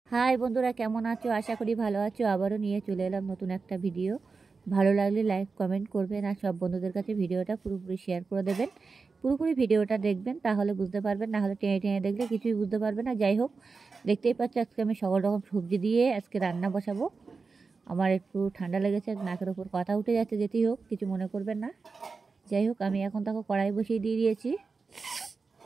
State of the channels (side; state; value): left; quieter; 4.5 dB